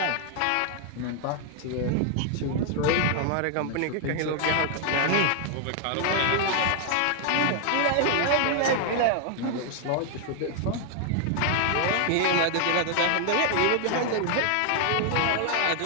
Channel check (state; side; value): different; both; correlation 0.00